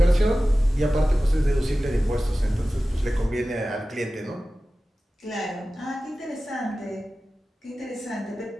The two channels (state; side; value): normal; both; correlation 0.96